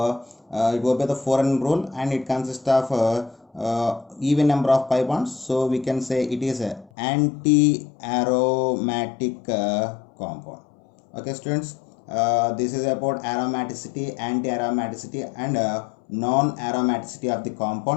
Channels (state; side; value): drops out; right; at 6.9 s